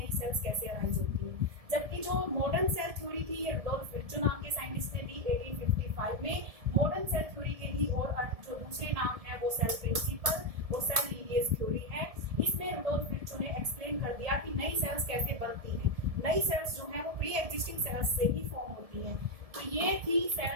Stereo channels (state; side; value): late; left; 1.7 ms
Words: सेल्स कैसे अराइज होती है। जबकि जो मॉडर्न सेल थ्योरी थी ये रुडोल्फ विर्चू नाम के साइंटिस्ट ने दी 1855 में। मॉडर्न सेल थ्योरी के भी और जो दूसरे नाम है वो सेल प्रिंसिपल और सेल लीनिएज थ्योरी है। इसमें रुडोल्फ विर्चू ने एक्सप्लेन कर दिया कि नई सेल्स कैसे बनती हैं। नई सेल्स जो है वो प्री एग्जिस्टिंग सेल्स से ही फॉर्म होती हैं। तो ये थी